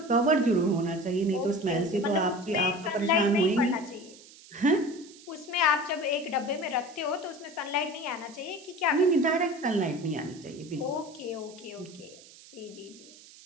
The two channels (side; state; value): right; noise; hiss, 21 dB below the sound